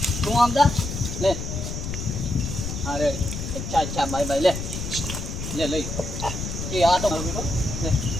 તું આમ જા લે હા રે અચ્છા બાય લે લઈ એ આ તો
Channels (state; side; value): noise; left; rumble, 5 dB below the sound